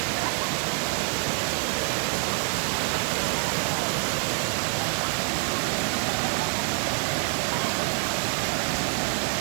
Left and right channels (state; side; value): quieter; left; 39.7 dB